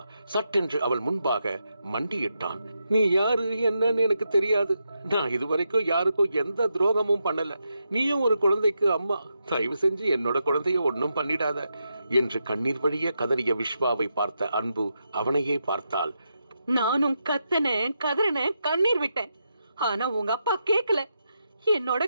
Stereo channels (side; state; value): both; inverted; correlation -0.84